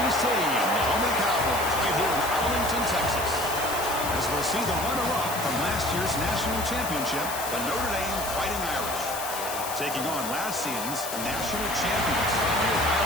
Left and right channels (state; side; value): noise; left; hiss, 7 dB below the sound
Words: Stadium, the home of the Cowboys, right here in Arlington, Texas. As we'll see the runner-up from last year's national championship, the Notre Dame Fighting Irish, taking on last season's national champions, the